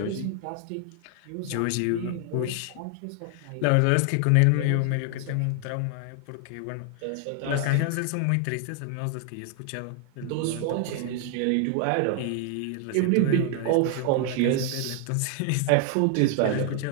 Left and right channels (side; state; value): both; different; correlation 0.00